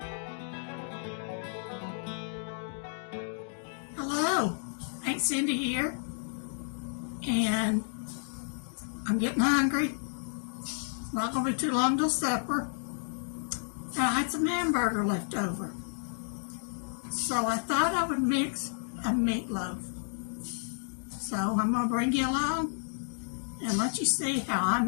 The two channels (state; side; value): silent; right; digital silence